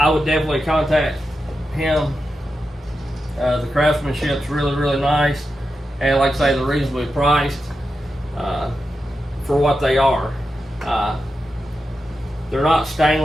would definitely contact him. The craftsmanship's really nice, and like I say, they're reasonably priced for what they are. They're not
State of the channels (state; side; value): normal; both; correlation 0.89